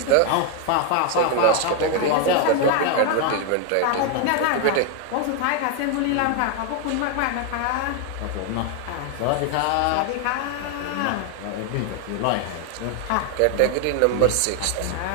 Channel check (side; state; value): both; different; correlation 0.01